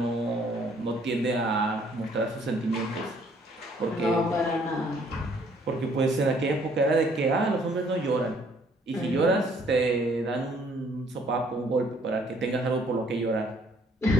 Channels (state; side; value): normal; both; correlation 0.63